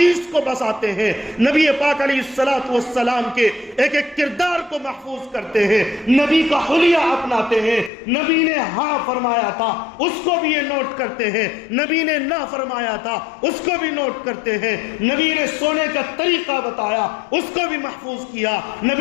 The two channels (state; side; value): drops out; right; at 7.9 s